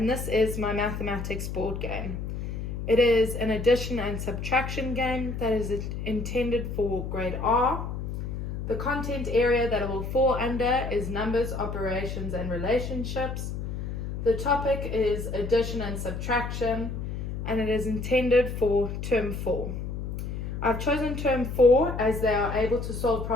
this is my mathematics board game. It is an addition and subtraction game that is intended for grade R. The content area that it will fall under is numbers, operations, and relationships. The topic is addition and subtraction, and it is intended for term 4. I've chosen term 4 as they are able to solve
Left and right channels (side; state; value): left; noise; hum, 5 dB below the sound